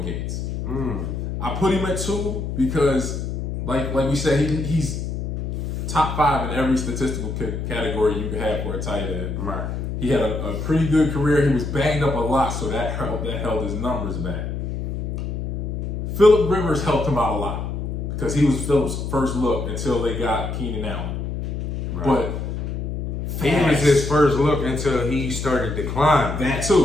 Gates. I put him at 2 because, like we said, he's top 5 in every statistical category you could have for a tight end. Right. He had a pretty good career. He was banged up a lot, so that held his numbers back. Phillip Rivers helped him out a lot because he was Phillip's first look until they got Keenan Allen. Right. But he was his first look until he started declining. That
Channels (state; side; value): noise; left; hum, 4 dB below the sound